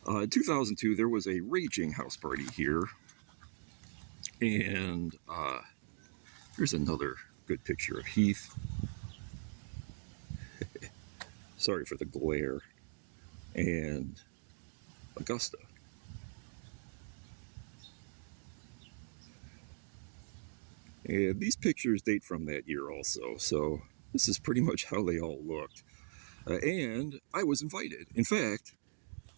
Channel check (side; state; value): left; silent; digital silence